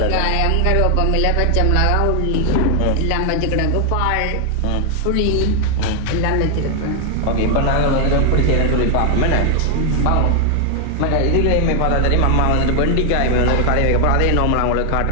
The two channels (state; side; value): different; both; correlation 0.00